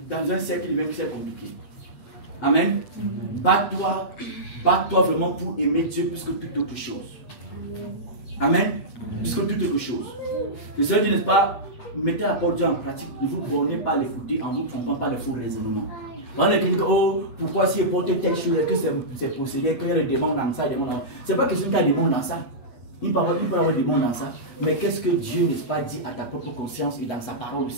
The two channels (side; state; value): right; late; 8.3 ms